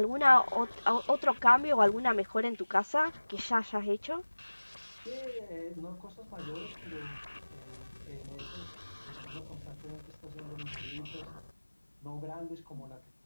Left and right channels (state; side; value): inverted; both; correlation -1.00